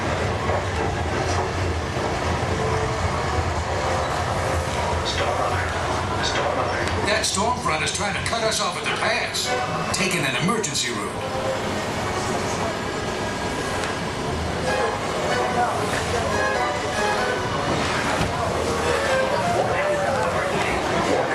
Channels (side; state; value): both; identical; correlation 1.00